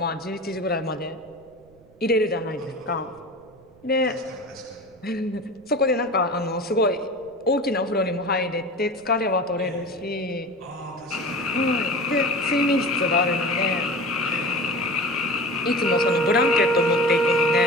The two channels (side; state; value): right; noise; rumble, 29 dB below the sound